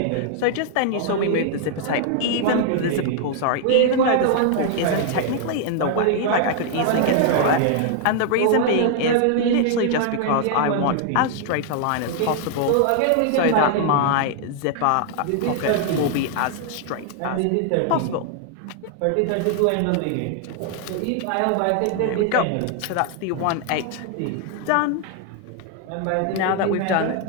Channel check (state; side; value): different; both; correlation 0.00